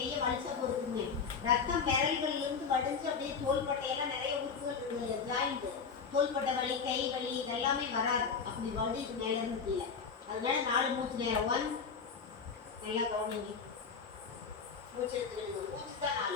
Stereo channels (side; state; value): right; quieter; 5.7 dB